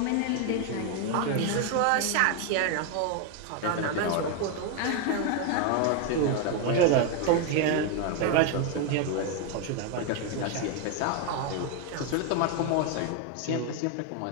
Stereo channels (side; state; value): both; different; correlation 0.01